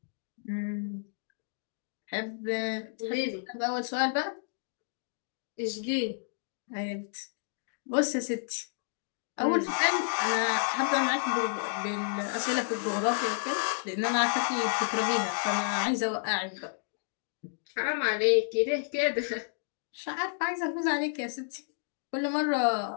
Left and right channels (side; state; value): right; silent; digital silence